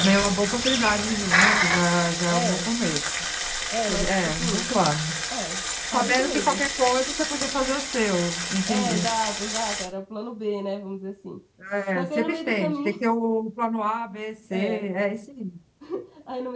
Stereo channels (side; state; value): both; identical; correlation 1.00